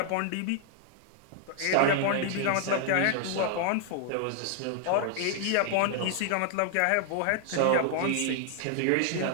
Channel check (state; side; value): different; both; correlation 0.00